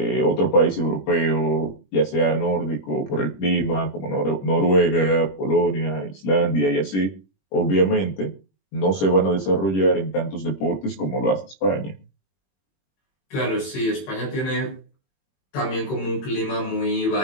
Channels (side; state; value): right; late; 21 ms